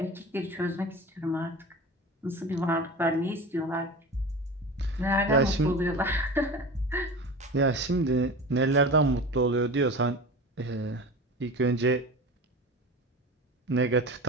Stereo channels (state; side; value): normal; both; correlation 0.32